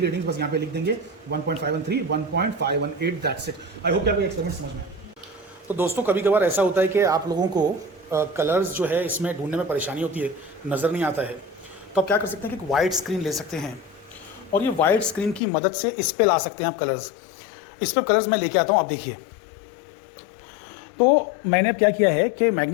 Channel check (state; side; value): drops out; right; at 15.4 s